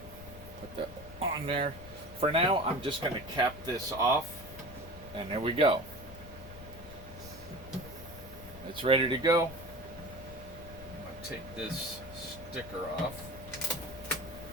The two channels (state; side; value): noise; left; rumble, 15 dB below the sound